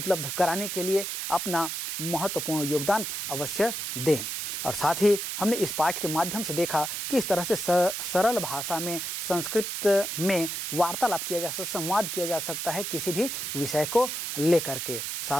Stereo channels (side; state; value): right; noise; hiss, 4 dB below the sound